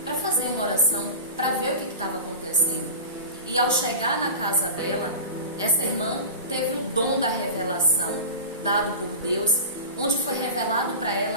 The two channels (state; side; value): inverted; both; correlation -0.31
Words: para fazer uma oração, para ver o que estava acontecendo. E ao chegar na casa dela, essa irmã teve o dom da revelação, dado por Deus, onde foi revelado para